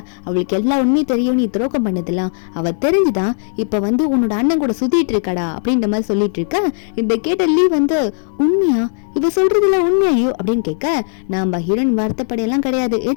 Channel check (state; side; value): silent; right; digital silence